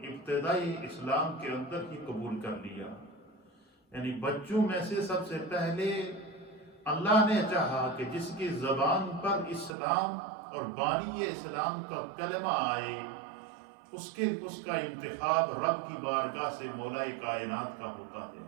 ابتدائی اسلام کے اندر ہی قبول کر لیا، یعنی بچوں میں سے سب سے پہلے اللہ نے چاہا کہ جس کی زبان پر اسلام اور بانی اسلام کا کلمہ آئے اس کا انتخاب رب کی بارگاہ سے مولا کائنات کا ہوتا ہے۔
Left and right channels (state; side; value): drops out; left; at 9.7 s